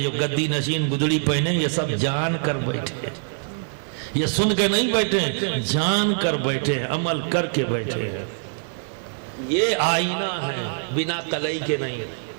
جو گدی نشین گدڑی پہنے، یہ سب جان کر بیٹھے، یہ سن کے نہیں بیٹھے، جان کر بیٹھے، عمل کر کے بیٹھے ہیں۔ یہ آئینہ ہے، بنا قلعی کے نہیں،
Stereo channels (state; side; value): silent; left; digital silence